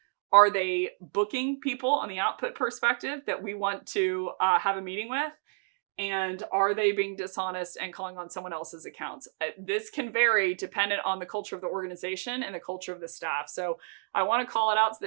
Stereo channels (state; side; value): silent; left; digital silence